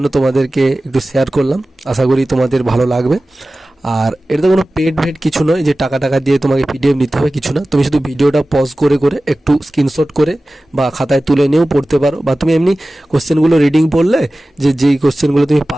তোমাদেরকে একটু শেয়ার করলাম। আশা করি তোমাদের ভালো লাগবে। আর এটা তো কোনো পেড ভেড কিছু নয় যে টাকা দিয়ে তোমাকে পিডিএফ নিতে হবে, কিছু না। তুমি শুধু ভিডিওটা পজ করে একটু স্ক্রিনশট করে বা খাতায় তুলে নিয়েও পড়তে পারো, বা তুমি এমনি কোশ্চেনগুলো রিডিং পড়লে যেই কোশ্চেনগুলো তুমি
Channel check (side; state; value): both; normal; correlation 0.96